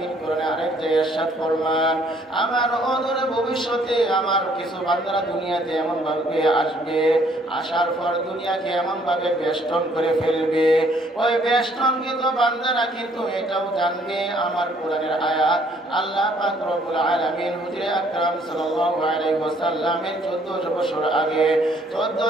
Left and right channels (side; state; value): both; normal; correlation 0.63